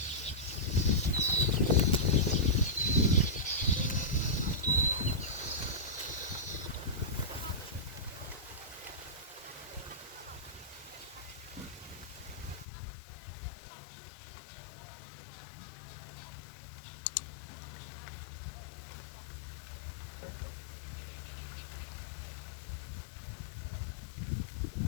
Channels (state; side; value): drops out; right; at 12.7 s